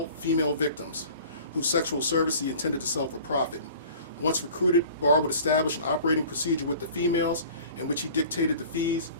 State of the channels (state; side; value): inverted; both; correlation -0.45